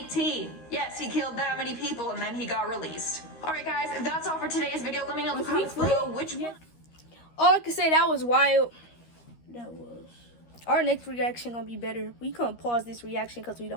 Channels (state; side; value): late; right; 13 ms